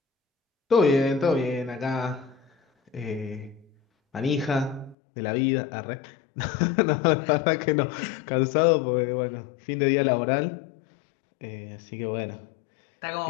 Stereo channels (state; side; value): drops out; right; at 5.0 s